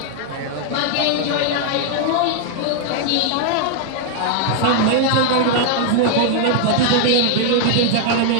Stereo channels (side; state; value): both; different; correlation 0.00